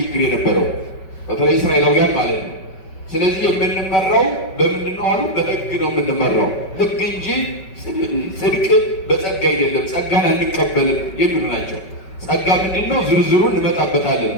የነበረው፣ በተለይ እስራኤላውያን ማለት ነው። ስለዚህ የምንመራው በምንድን ነው አሉ? በሕግ ነው የምንመራው። ሕግ እንጂ ጽድቅ በጸጋ አይደለም፣ ጸጋን አንቀበልም የሚሉ ናቸው። ጸጋ ምንድን ነው? ዝርዝሩን እንመጣበታለን።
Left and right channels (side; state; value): right; late; 5.3 ms